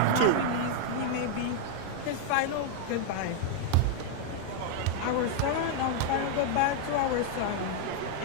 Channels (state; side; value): different; both; correlation 0.00